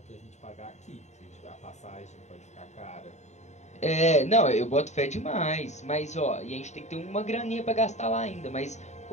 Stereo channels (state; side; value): late; right; 0.34 ms